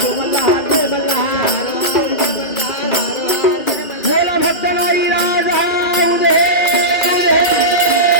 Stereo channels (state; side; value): late; right; 1.9 ms